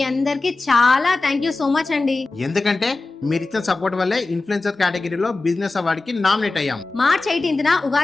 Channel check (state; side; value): quieter; right; 3.4 dB